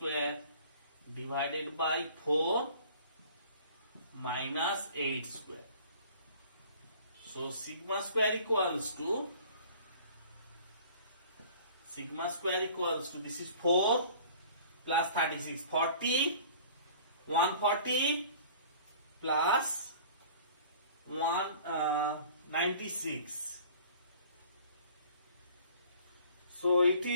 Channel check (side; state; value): both; inverted; correlation -0.48